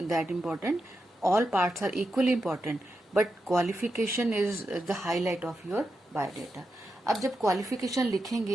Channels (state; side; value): normal; both; correlation 0.87